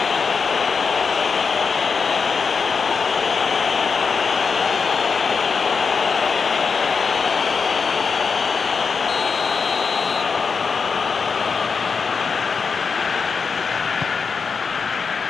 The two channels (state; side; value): quieter; right; 5.3 dB